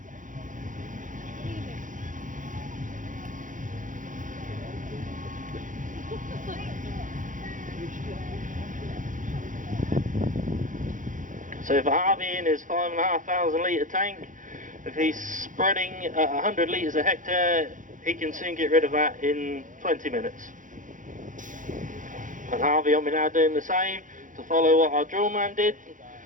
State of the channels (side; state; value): left; late; 0.38 ms